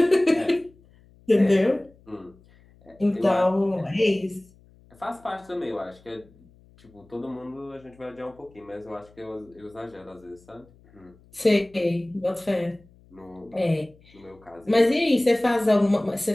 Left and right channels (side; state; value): left; noise; hum, 28 dB below the sound